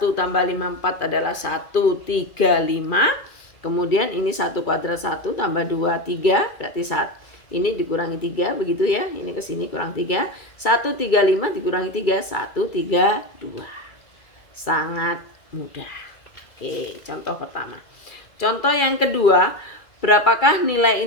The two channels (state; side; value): late; right; 2.3 ms